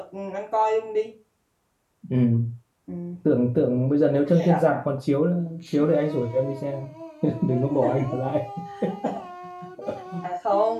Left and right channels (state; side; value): identical; both; correlation 1.00